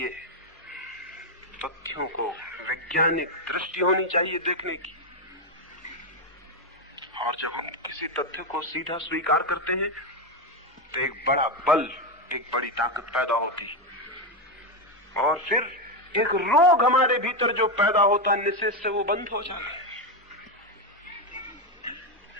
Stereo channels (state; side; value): normal; both; correlation 0.07